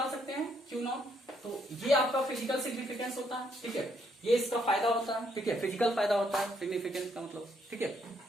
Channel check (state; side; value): normal; both; correlation 0.72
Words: सकते हैं क्यू नॉट। तो ये आपका फिजिकल सिग्निफिकेंस होता है, ठीक है, ये इसका फायदा होता है, ठीक है, फिजिकल फायदा होता है सिग्निफिकेंस का मतलब, ठीक है।